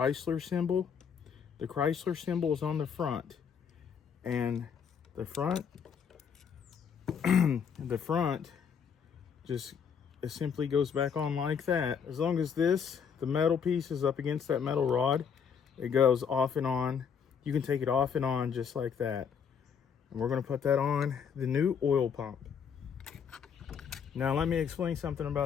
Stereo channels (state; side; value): quieter; right; 7.1 dB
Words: symbol. The Chrysler symbol is on the front, and the front the front just, it simply goes back on like that. As long as the metal piece is up against that metal rod, it goes off and on. You can take it off and on just like that. And we're going to put that on the new oil pump. Now let me explain something